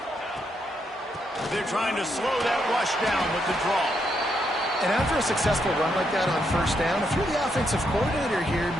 They're trying to slow that rush down with the draw. And after a successful run like that on 1st down, if you're the offensive coordinator here,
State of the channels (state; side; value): normal; both; correlation 0.78